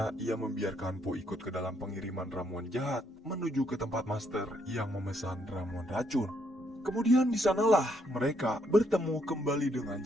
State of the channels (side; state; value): both; normal; correlation 0.73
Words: ia membiarkan Po ikut ke dalam pengiriman ramuan jahat menuju ke tempat master yang memesan ramuan racun. Kemudian di sanalah mereka bertemu kembali dengan